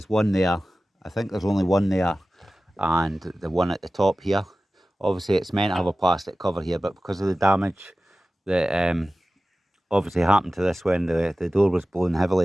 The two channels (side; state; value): both; normal; correlation 0.96